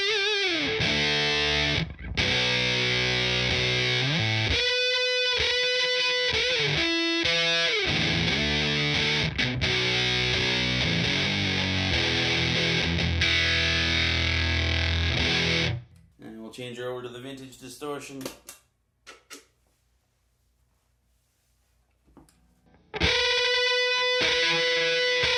And we'll change her over to the Vintage Distortion.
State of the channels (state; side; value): identical; both; correlation 1.00